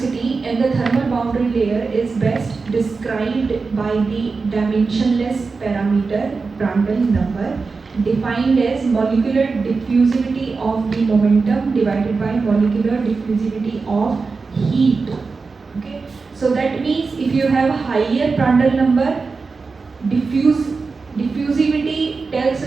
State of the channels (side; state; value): left; quieter; 4.4 dB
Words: and the thermal boundary layer is best described by the dimensionless parameter Prandtl number, defined as molecular diffusivity of the momentum divided by molecular diffusivity of heat. Okay, so that means if you have higher Prandtl number, diffusivity tells